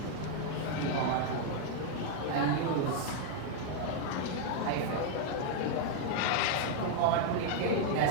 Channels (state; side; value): different; both; correlation 0.00